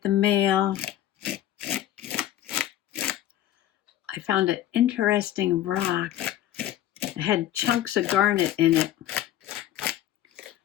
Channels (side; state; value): right; quieter; 12.6 dB